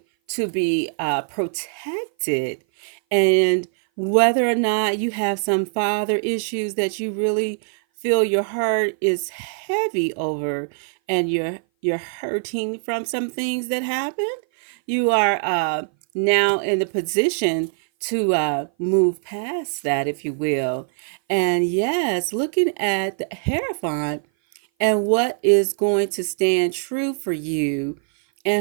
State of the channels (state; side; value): silent; left; 58 dB below the other